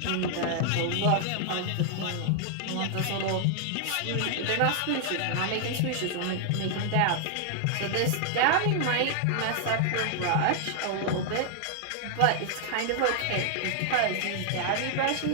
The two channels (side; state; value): both; different; correlation 0.00